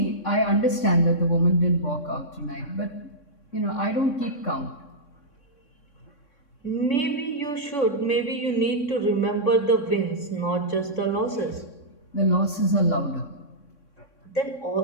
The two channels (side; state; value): right; late; 3.6 ms